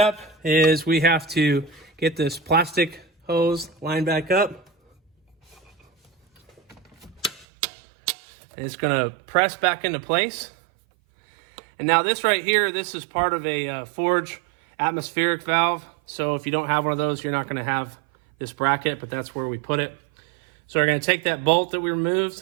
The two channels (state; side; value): drops out; left; at 7.5 s